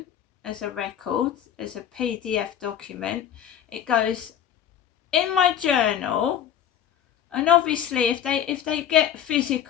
as a record, as a PDF document. It goes in my journal. And obviously, if they get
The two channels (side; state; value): right; quieter; 9.7 dB